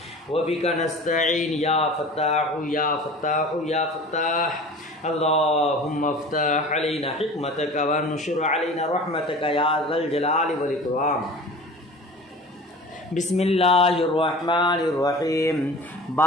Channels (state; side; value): normal; both; correlation 0.40